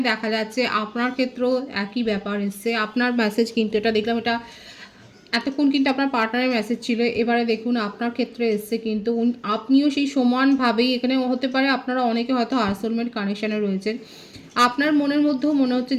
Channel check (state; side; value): identical; both; correlation 1.00